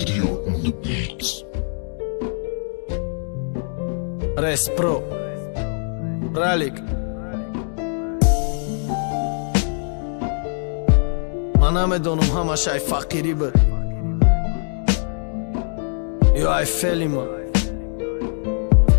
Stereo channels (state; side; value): silent; right; 64 dB below the other